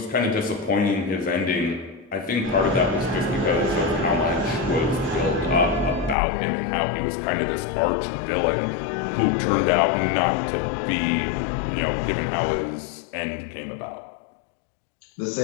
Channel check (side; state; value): right; drops out; at 6.2 s